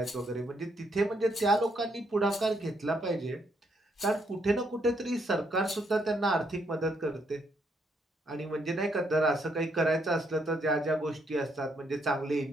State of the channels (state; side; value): normal; both; correlation 0.74